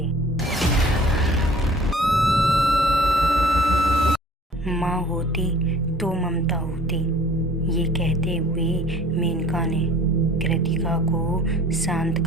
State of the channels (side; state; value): both; normal; correlation 0.49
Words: माँ होती तो ममता होती, ये कहते हुए मेनका ने कृतिका को शांत